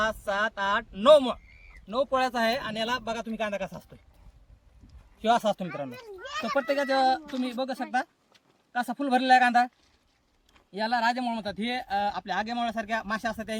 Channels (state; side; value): identical; both; correlation 1.00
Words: 7 8 9 पोळ्याचा आहे. आणि याला बघा तुम्ही कांदा कसा असतोय, किंवा असा असतो मित्रांनो. तर प्रत्येकाचं तुम्ही बघू शकता कसा फुल भरलेला आहे कांदा. याला राजेमोळ म्हणतात. हे आपल्या आगेमोळ्यासारख्या माश्या असतात